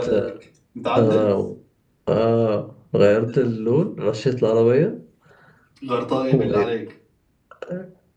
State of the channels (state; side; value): identical; both; correlation 1.00